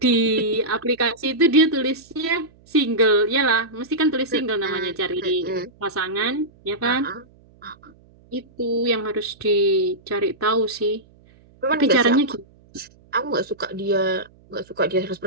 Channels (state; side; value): noise; right; hum, 28 dB below the sound